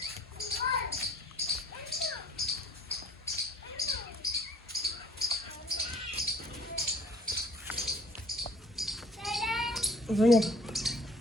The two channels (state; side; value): normal; both; correlation 0.54